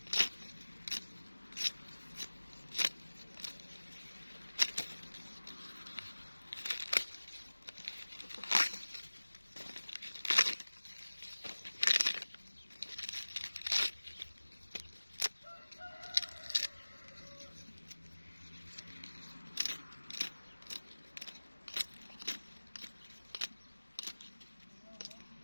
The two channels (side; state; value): both; inverted; correlation -1.00